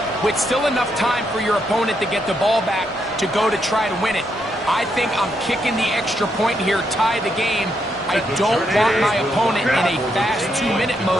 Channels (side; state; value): both; normal; correlation 0.79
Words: with still enough time for your opponent to get the ball back to go to try to win it? I think I'm kicking the extra point here, tie the game. I don't want my opponent in a fast 2-minute